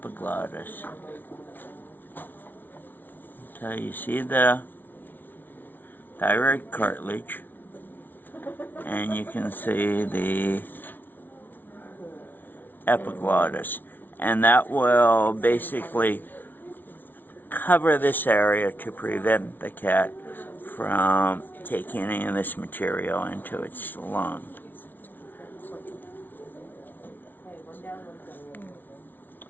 So you see the thyroid cartilage, and you can see the epiglottis, and that will basically cover this area to prevent the cat from taking any of this material into its lung.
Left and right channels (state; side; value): late; right; 0.089 ms